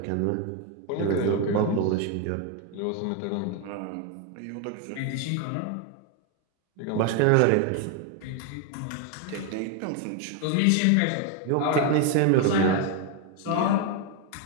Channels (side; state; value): both; different; correlation 0.01